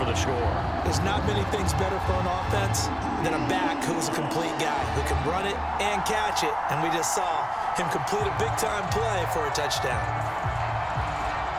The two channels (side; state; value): both; identical; correlation 1.00